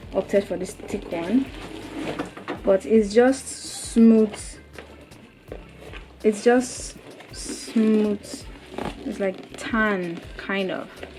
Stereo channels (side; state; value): both; identical; correlation 1.00